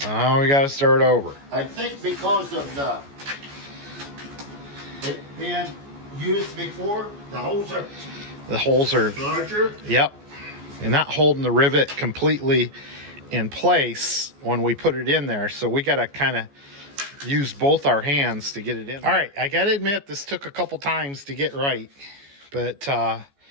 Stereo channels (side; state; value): left; late; 14 ms